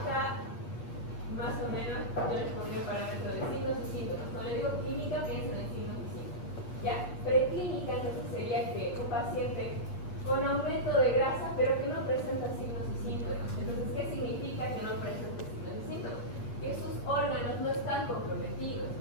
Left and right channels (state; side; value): late; right; 8.4 ms